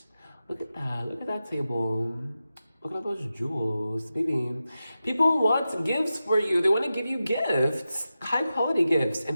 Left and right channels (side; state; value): both; inverted; correlation -0.92